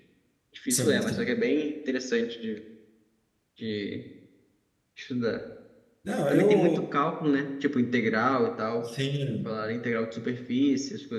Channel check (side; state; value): both; identical; correlation 1.00